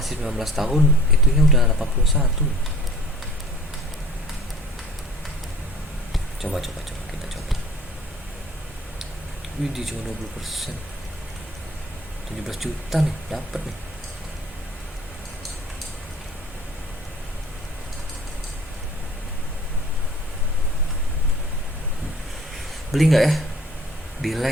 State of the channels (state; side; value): normal; both; correlation 0.50